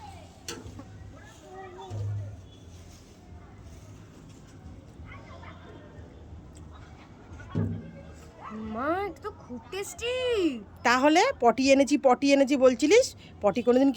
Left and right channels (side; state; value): both; identical; correlation 1.00